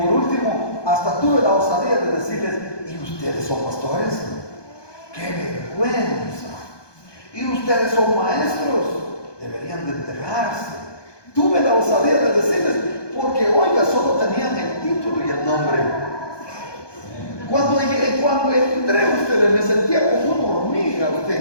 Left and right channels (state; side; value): late; right; 1.2 ms